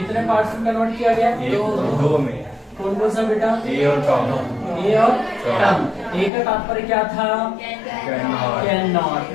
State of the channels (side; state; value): right; drops out; at 6.3 s